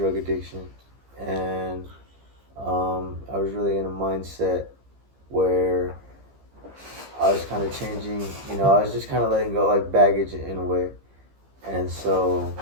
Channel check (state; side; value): late; left; 15 ms